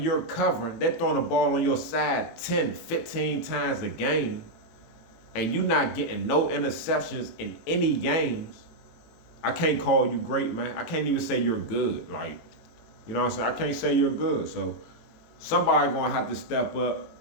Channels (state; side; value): late; right; 18 ms